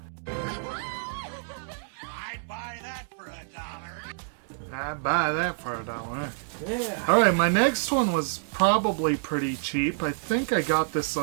I'd buy that for $1. I'd buy that for $1. Yeah. Alright, my next one was probably pretty cheap. I think I got this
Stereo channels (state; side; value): silent; left; digital silence